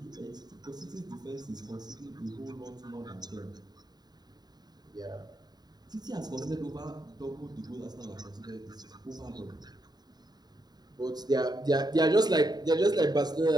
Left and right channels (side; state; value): left; late; 0.20 ms